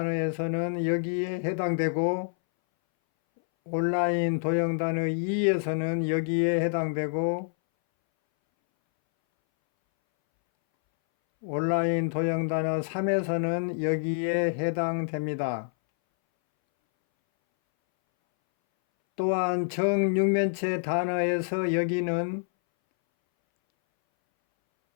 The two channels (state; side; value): silent; right; 60 dB below the other